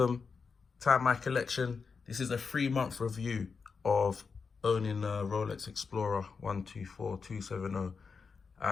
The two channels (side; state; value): right; quieter; 5.3 dB